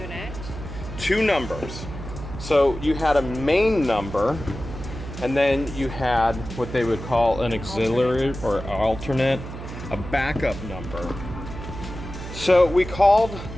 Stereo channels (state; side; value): noise; right; hum, 10 dB below the sound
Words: 2 numbers. So you had a main number, and then you had what they would call an auxiliary or alternate, a backup number. So we called